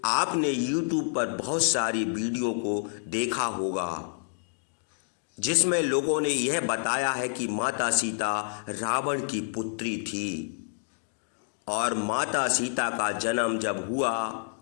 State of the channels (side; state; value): right; silent; digital silence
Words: आपने YouTube पर बहुत सारी वीडियो को देखा होगा जिसमें लोगों ने यह बताया है कि माता सीता रावण की पुत्री थी और माता सीता का जन्म जब हुआ